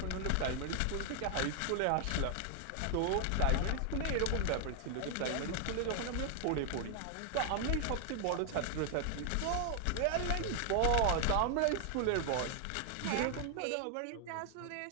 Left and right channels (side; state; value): both; different; correlation 0.00